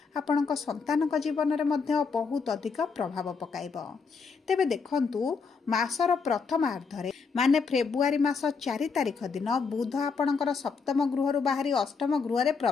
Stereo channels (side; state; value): right; quieter; 5.2 dB